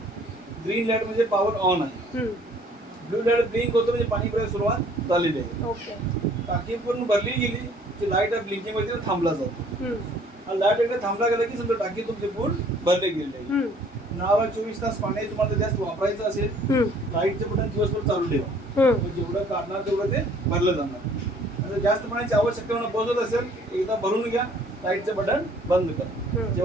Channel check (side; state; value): both; normal; correlation 0.57